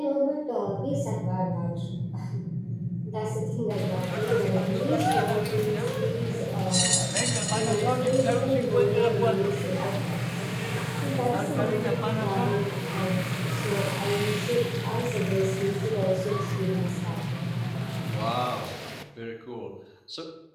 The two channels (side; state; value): both; identical; correlation 1.00